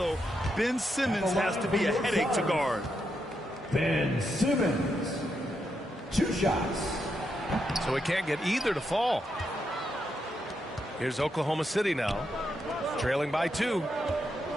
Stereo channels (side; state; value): both; normal; correlation 0.82